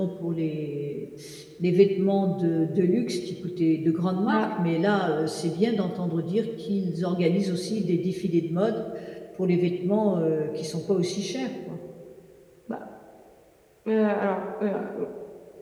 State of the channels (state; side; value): identical; both; correlation 1.00